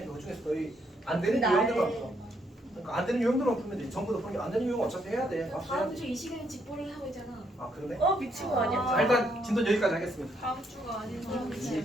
그 중에서 너희 안 되는 유형들만 풀어. 그러니까 안 되는 유형들만 풀면 돼. 전부 다 풀면 안 되는 유형 어차피 해야 돼. 맞춰야 다음 돼. 주 이 시간에 직보를 하고 있잖아. 아 그러네. 미친 거 아니야? 자 일단 진도 여기까지 하겠습니다. 다음 주가 아니죠.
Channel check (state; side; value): normal; both; correlation 0.74